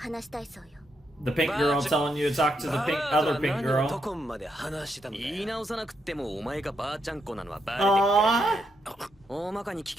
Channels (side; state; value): both; normal; correlation 0.80